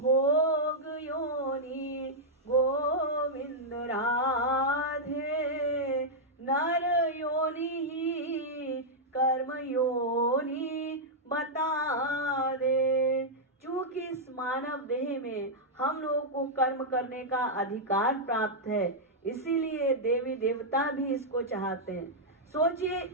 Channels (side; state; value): both; normal; correlation -0.06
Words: योनि गोविंद राधे, नर योनि ही कर्म योनि बता दे। चूंकि इस मानव देह में हम लोगों को कर्म करने का अधिकार प्राप्त है, इसीलिए देवी देवता भी इसको चाहते हैं। सोचिए